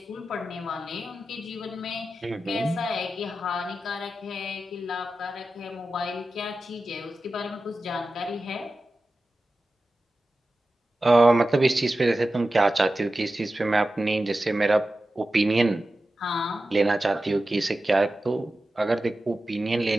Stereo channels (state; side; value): normal; both; correlation 0.93